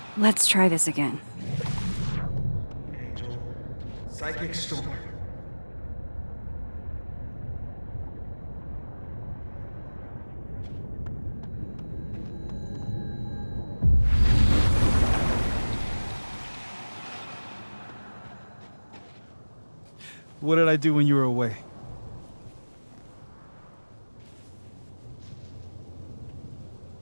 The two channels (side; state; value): both; inverted; correlation -1.00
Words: Let's try this again. Angel, psychic storm. What did I do when you were away?